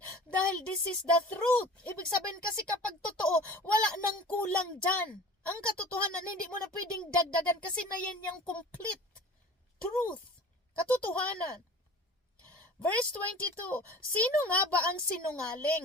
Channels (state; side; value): normal; both; correlation 0.41